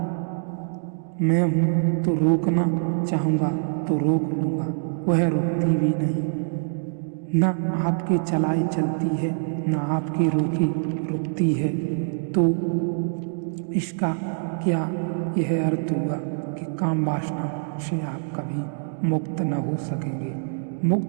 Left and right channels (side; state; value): left; silent; digital silence